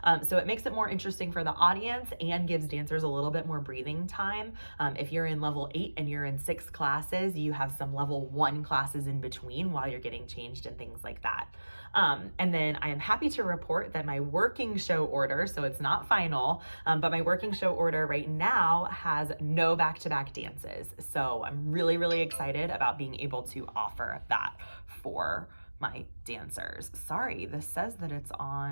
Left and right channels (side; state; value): both; inverted; correlation -1.00